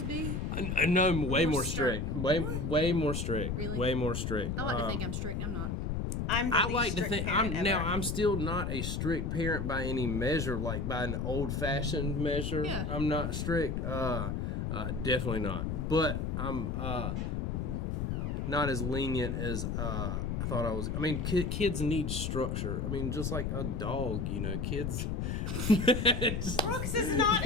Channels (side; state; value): left; noise; rumble, 1 dB below the sound